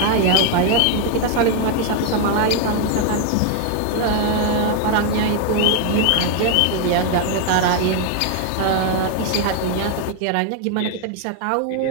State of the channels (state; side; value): different; both; correlation 0.00